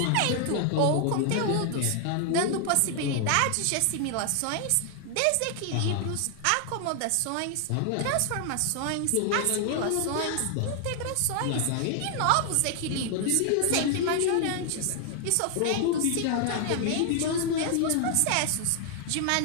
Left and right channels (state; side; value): different; both; correlation 0.00